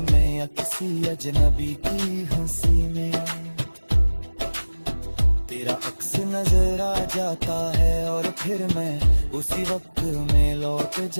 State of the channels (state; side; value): inverted; both; correlation -1.00